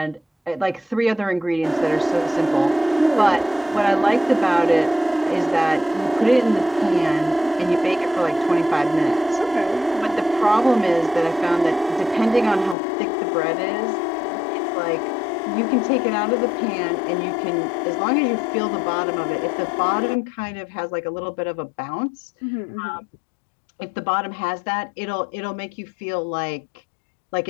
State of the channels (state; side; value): drops out; right; at 12.8 s